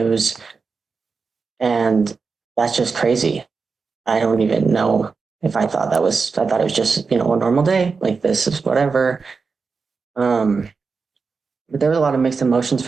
and that's just crazy. I don't even know if I thought it was just, a normal day. Like this is whatever. Um, but there was a lot of mixed emotions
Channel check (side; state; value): left; quieter; 4.8 dB